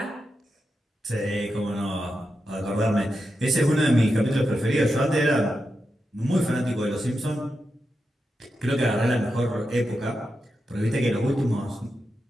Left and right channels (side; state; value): both; normal; correlation 0.88